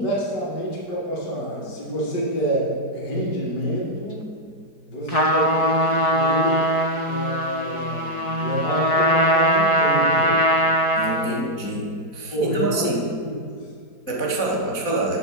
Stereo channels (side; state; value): right; late; 4.7 ms